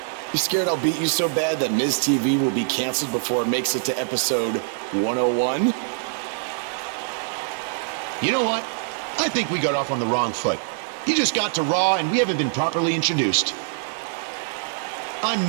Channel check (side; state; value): left; silent; digital silence